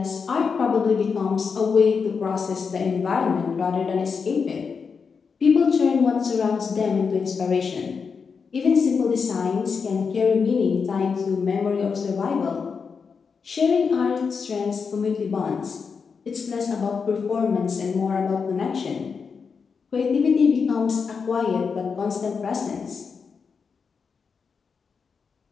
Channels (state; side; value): quieter; right; 5.6 dB